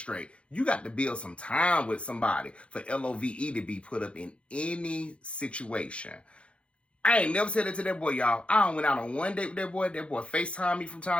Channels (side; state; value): right; late; 0.060 ms